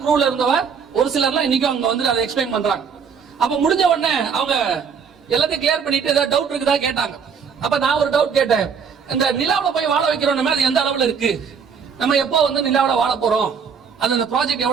க்ரூல இருந்தவ ஒரு சிலர்லாம் இன்னைக்கும் அங்க வந்து அதை எக்ஸ்பிளைன் பண்றாங்க. அப்ப முடிஞ்ச உடனே அவங்க எல்லாத்தையும் கிளியர் பண்ணிட்டு ஏதாவது டவுட் இருக்குதா கேட்டாங்க. அப்ப நான் ஒரு டவுட் கேட்டேன், இந்த நிலாவுல போய் வாழ வைக்கிறோம் அது எந்த அளவுல இருக்கு, நம்ம எப்போ வந்து நிலாவுல வாழ போறோம், அந்த ப்ராஜெக்ட்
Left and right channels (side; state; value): left; quieter; 6.5 dB